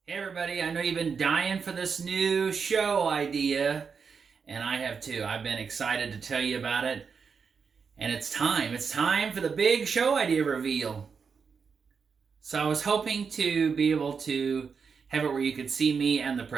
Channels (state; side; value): quieter; left; 5.8 dB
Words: Hey everybody, I know you've been dying for this new show idea, and I have too. I've been excited to tell you about it, and it's time. It's time for the big show idea reveal. So I was hoping to be able to have it where you could see me and the